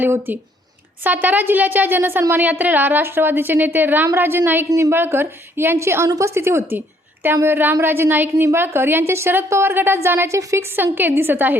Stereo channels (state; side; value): normal; both; correlation 0.65